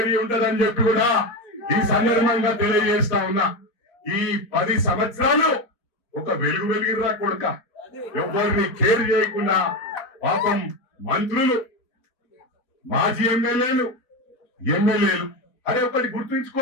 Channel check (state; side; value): late; right; 4.2 ms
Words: ఉంటదని చెప్పి కూడా ఈ సందర్భంగా తెలియజేస్తా ఉన్నా. ఈ 10 సంవత్సరాలు ఒక వెలుగు వెలిగిర్రా కొడుక. ఎవరిని కేర్ చేయకుండా పాపం మంత్రులు, మాజీ ఎమ్మెల్యేలు అరే ఒకటి